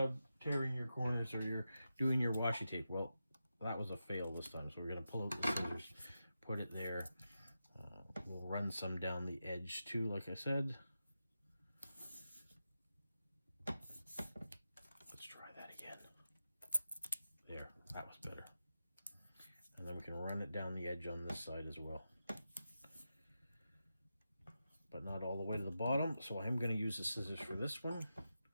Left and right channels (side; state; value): both; inverted; correlation -0.89